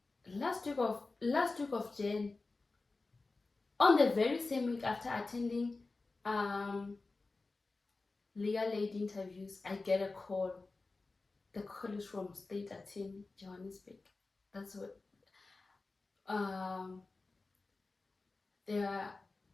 Last week of Jan, on the very same week after attending Legal Aid interviews, I get a call. The call is from State Attorney Johannesburg. That's what they are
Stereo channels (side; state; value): right; quieter; 3.6 dB